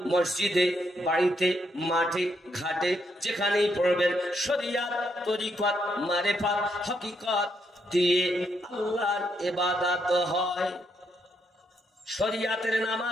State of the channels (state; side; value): normal; both; correlation 0.77